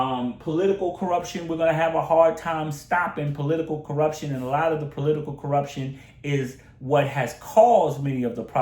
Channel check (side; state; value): both; identical; correlation 1.00